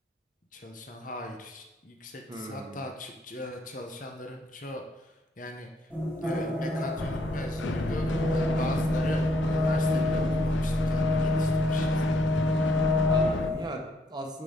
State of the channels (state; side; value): normal; both; correlation 0.71